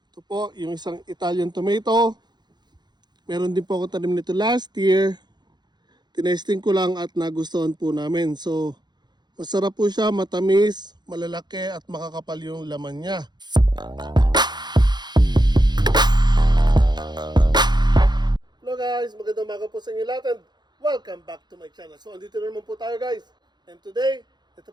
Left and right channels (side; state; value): left; late; 0.21 ms